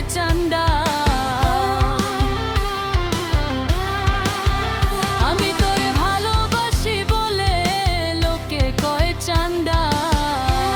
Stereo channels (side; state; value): both; identical; correlation 1.00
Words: চান্দা, আমি তোরে ভালোবাসি বলে লোকে কয় চান্দা।